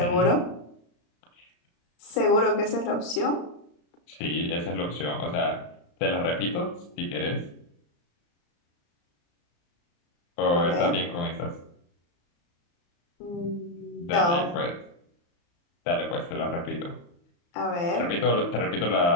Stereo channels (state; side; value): late; right; 35 ms